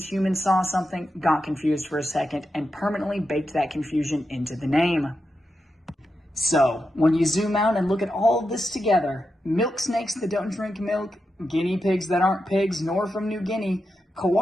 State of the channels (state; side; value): normal; both; correlation 0.88